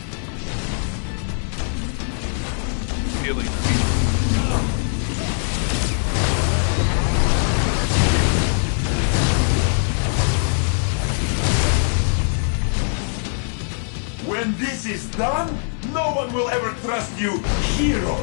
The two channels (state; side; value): silent; right; digital silence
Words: Feeling. When this is done, no one will ever trust you